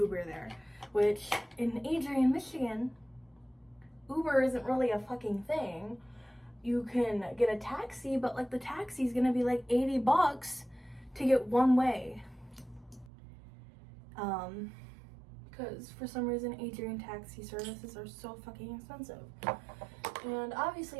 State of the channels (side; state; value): left; drops out; at 13.1 s